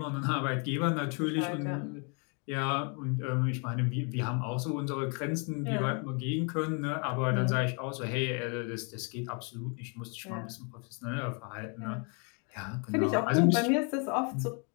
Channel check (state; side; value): quieter; right; 36.8 dB